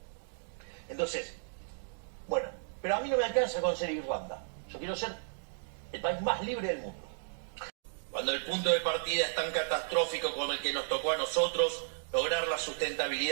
Entonces, bueno, pero a mí no me alcanza con ser Irlanda. Yo quiero ser el país más libre del mundo. Cuando el punto de partida es tan catastrófico como el que nos tocó a nosotros, lograr la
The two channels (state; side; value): silent; left; digital silence